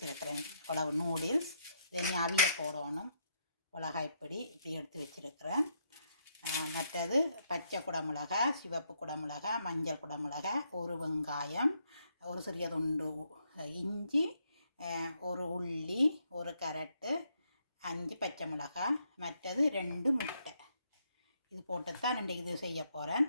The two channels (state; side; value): inverted; both; correlation -0.75